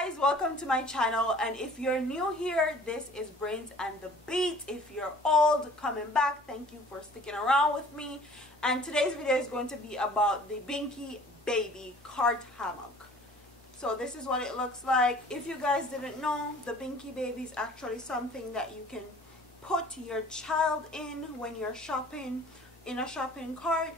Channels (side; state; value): both; normal; correlation 0.49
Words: welcome to my channel, and if you're new here, this is Brains and the Beat. If you're old, coming back, thank you for sticking around with me. And today's video is going to be about the Binxybaby cart hammock. So this is what it looks like. If you guys didn't know, the Binxybaby is actually something that you can put your child in when you're shopping in a shopping cart,